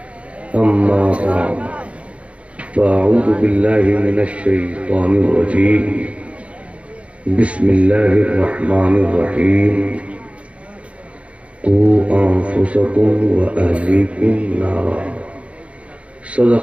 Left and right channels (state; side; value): late; left; 0.062 ms